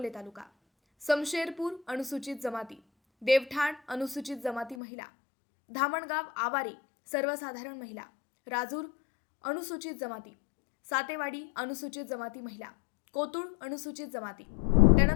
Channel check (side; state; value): right; drops out; at 4.8 s